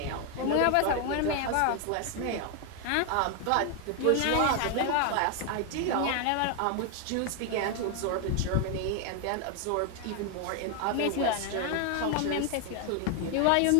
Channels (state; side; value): different; both; correlation 0.00